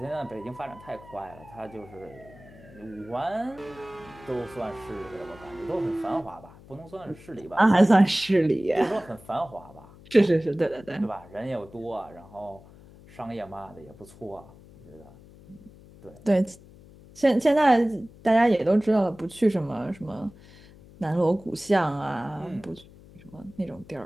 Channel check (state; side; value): noise; left; hum, 22 dB below the sound